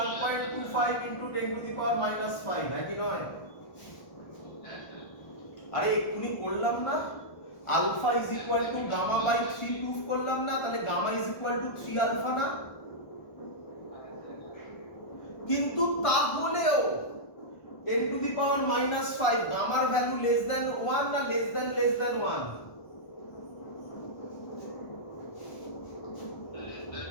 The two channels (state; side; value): late; right; 1.3 ms